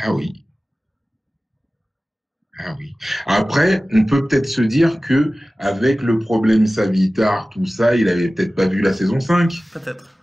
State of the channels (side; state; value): both; normal; correlation 0.96